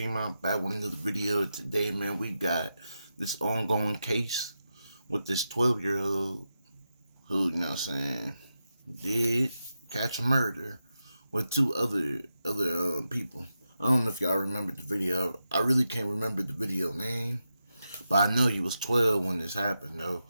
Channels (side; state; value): both; inverted; correlation -0.88